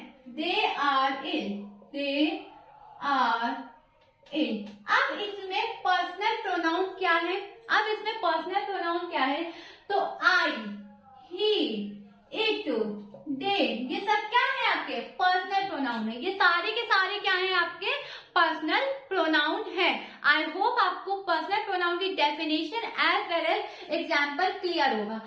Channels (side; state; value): both; identical; correlation 1.00